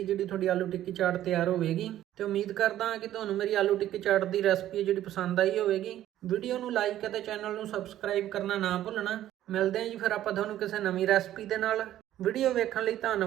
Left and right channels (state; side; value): quieter; left; 12.7 dB